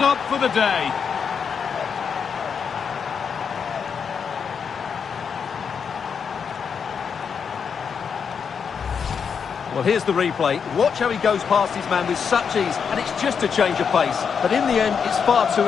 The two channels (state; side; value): quieter; right; 6.6 dB